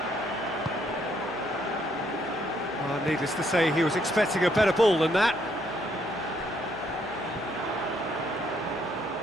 Needless to say, he was expecting a better ball than that.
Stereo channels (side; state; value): left; noise; hum, 23 dB below the sound